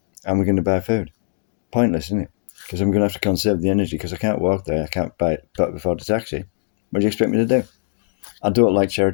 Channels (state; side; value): silent; right; digital silence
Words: And we're going to buy food? Pointless, isn't it? Because I'm going to have to conserve the energy because I can't walk there. I can't afford a taxi. What do you expect me to do? I don't like